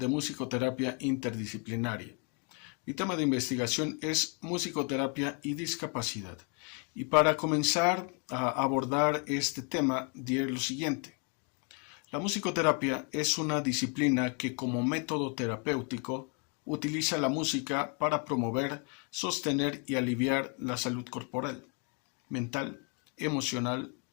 Musicoterapia Interdisciplinaria. Mi tema de investigación es musicoterapia y discapacidad. Y para comenzar a abordar este tema, diré lo siguiente. La musicoterapia es una disciplina que como método terapéutico utiliza la música para promover, sostener y aliviar la salud corporal, mental, emocional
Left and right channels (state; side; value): quieter; right; 36.5 dB